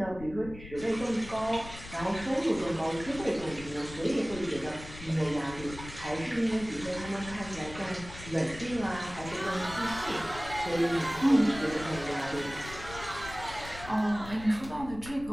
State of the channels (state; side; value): noise; left; rumble, 14 dB below the sound